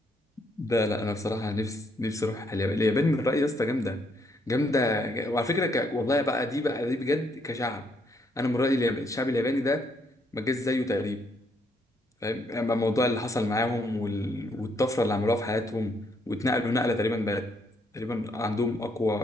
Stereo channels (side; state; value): both; normal; correlation 0.72